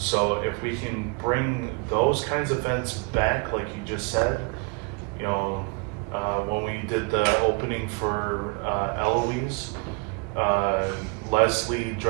if we can bring those kinds of events back, like you just said, you know, when we did the opening for Eloise, Leslie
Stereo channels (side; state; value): left; quieter; 32.0 dB